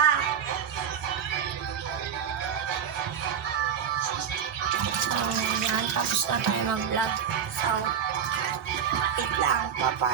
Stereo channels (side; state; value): left; quieter; 8.0 dB